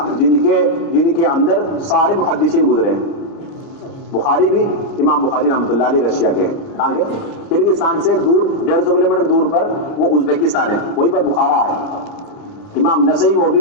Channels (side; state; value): right; late; 29 ms